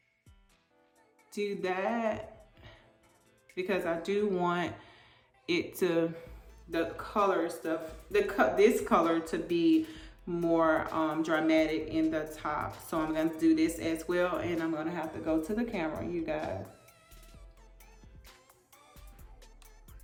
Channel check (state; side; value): identical; both; correlation 1.00